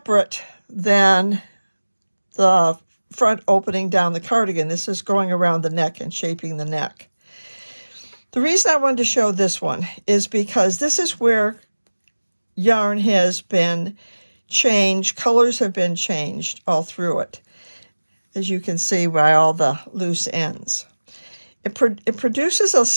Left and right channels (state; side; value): inverted; both; correlation -1.00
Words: than the front opening down the cardigan. This is going around the neck and shaping the neck. The reason I wanted to show this one is because this is where yarn has been changed, colors have been changed all through it, as you can see by all the loose ends. It produces a